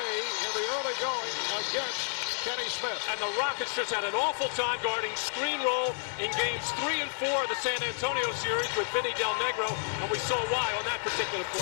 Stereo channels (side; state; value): right; silent; 58 dB below the other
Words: in the early going against Kenny Smith. And the Rockets just had an awful time guarding screen roll in games 3 and 4 of the San Antonio series with Vinny Del Negro, and we saw why on that particular